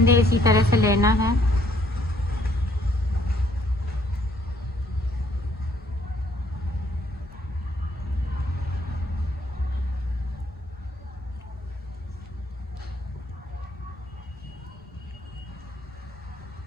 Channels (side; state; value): both; normal; correlation 0.65